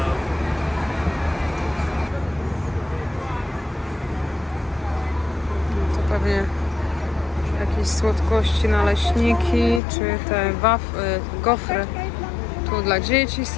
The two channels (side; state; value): right; drops out; at 9.8 s